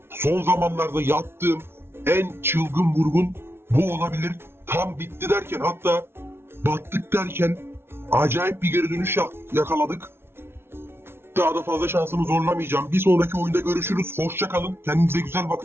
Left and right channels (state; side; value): late; left; 0.12 ms